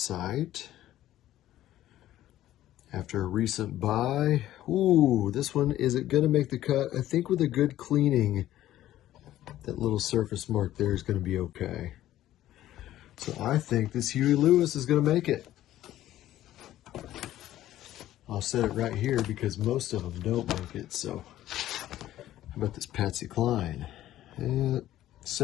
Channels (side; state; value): right; quieter; 13.6 dB